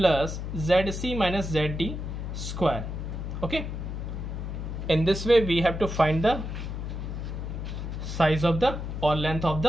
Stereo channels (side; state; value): left; noise; hum, 5 dB below the sound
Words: ZC minus ZD square. Okay, in this way we have to find the size of the or length of